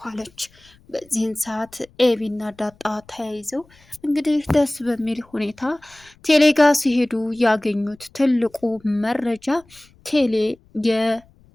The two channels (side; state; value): left; noise; rumble, 29 dB below the sound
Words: አለች። በዚህን ሰዓት ኤቢና ዳጣ ተያይዘው እንግዲህ ደስ በሚል ሁኔታ ቴሌጋ ሲሄዱ ያገኙት ትልቁ መረጃ ቴሌ